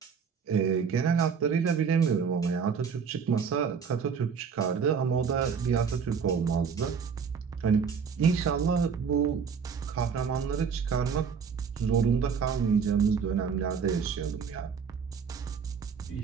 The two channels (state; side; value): quieter; left; 6.4 dB